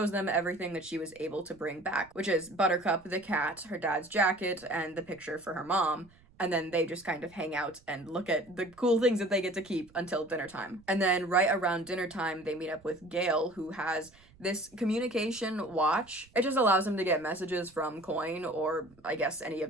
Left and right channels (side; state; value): right; noise; rumble, 28 dB below the sound